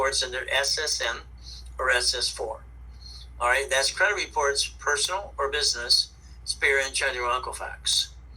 under SSN or SS4. All right? That's credit reports, personal or business, Experian, TransUnion, Equifax.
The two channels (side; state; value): both; identical; correlation 1.00